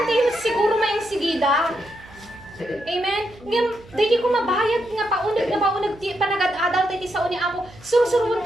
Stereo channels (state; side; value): noise; right; hum, 22 dB below the sound